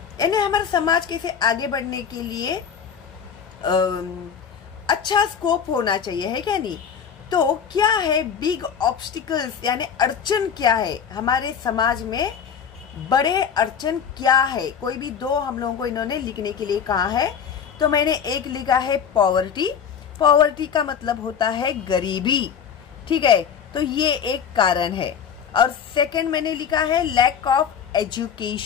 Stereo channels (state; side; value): quieter; right; 7.5 dB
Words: यानी हमारा समाज कैसे आगे बढ़ने के लिए अच्छा स्कोप होना चाहिए, है क्या नहीं। तो क्या है बिग ऑब्स्टिकल्स, यानी अड़चन क्या है हमारे समाज में, बड़े अड़चन क्या है। कोई भी 2 हम लोगों को इन्होंने लिखने के लिए कहा है, तो मैंने एक लिखा है पॉवर्टी। पॉवर्टी का मतलब होता है गरीबी, ठीक है, तो ये एक कारण है। और सेकंड मैंने लिखा है लैक ऑफ